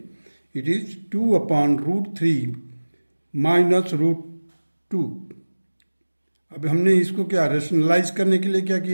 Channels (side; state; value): both; inverted; correlation -1.00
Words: It is 2 upon root 3 minus root 2. अब हमने इसको क्या रेशनलाइज करने के लिए क्या